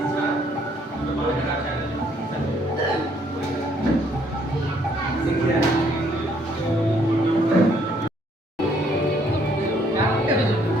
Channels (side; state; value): both; normal; correlation 0.66